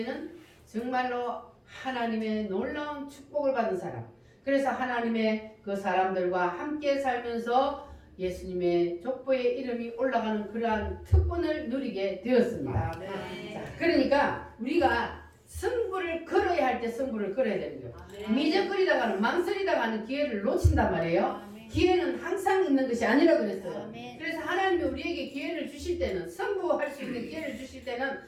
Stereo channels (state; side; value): identical; both; correlation 1.00